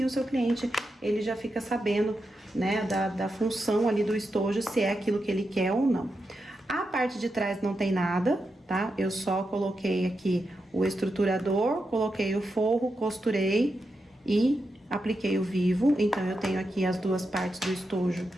o seu cliente, ele já fica sabendo, né, da função ali do estojo, se é aquilo que ele quer ou não. A parte de trás não tem nada, tá? Eu só coloquei aqui o estruturador, coloquei o forro, costurei e apliquei o vivo. Então, eu tenho aqui as duas partes do estojo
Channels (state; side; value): normal; both; correlation 0.87